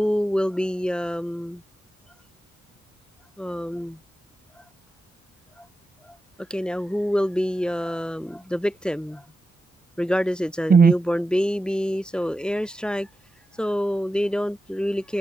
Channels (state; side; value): normal; both; correlation 0.91